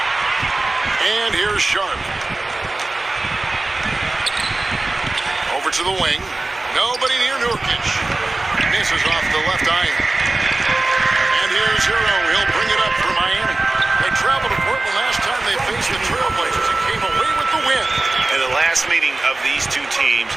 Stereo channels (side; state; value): left; quieter; 3.0 dB